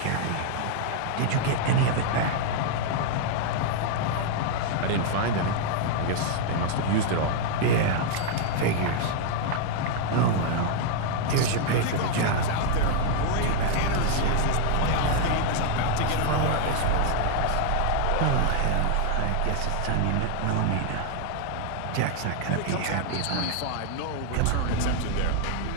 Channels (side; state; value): both; different; correlation 0.00